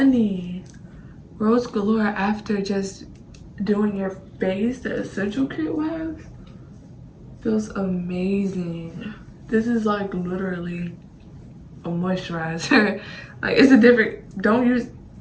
Rose Galore, after just doing your face, the essential kit wax feels amazing. This is like literally a moisturizer. Like, it's a different,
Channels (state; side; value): identical; both; correlation 1.00